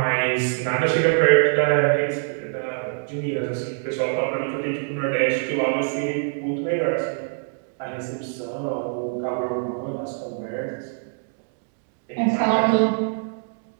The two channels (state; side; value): silent; left; digital silence